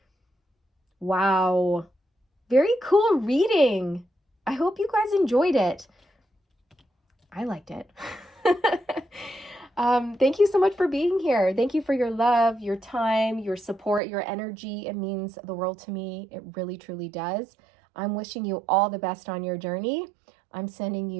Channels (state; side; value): drops out; left; at 14.0 s